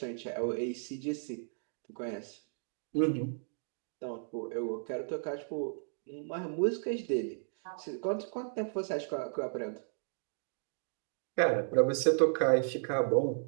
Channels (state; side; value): silent; left; digital silence